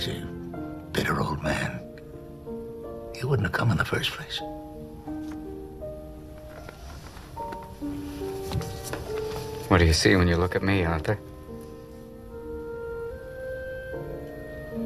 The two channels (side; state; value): both; identical; correlation 1.00